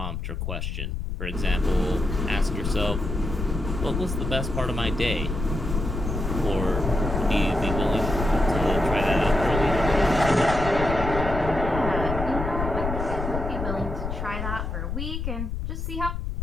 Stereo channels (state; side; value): noise; left; rumble, 4 dB below the sound